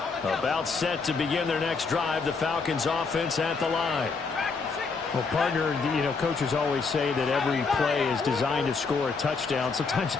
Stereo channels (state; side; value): quieter; right; 4.7 dB